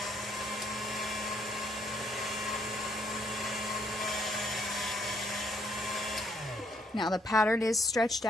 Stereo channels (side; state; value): both; normal; correlation 0.69